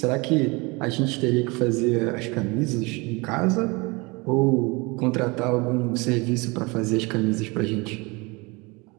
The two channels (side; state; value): left; quieter; 26.4 dB